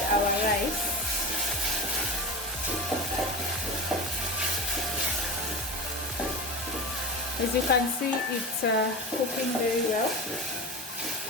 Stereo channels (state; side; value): normal; both; correlation 0.26